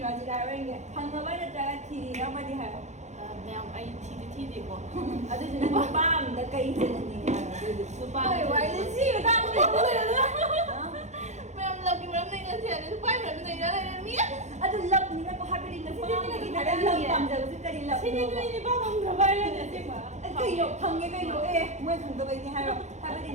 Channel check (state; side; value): late; left; 0.33 ms